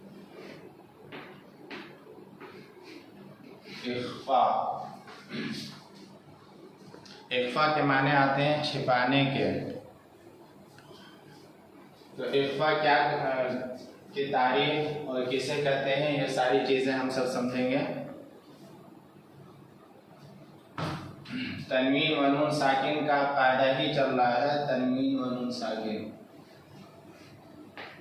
इख्फा, इख्फा के माने आते हैं छिपाने के। तो इख्फा क्या की तारीफ और किसे कहते हैं, ये सारी चीजें हम सब समझेंगे। तनवीन व नून साकिन का कायदा ही चल रहा है, तनवीन व नून साकिन।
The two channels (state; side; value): identical; both; correlation 1.00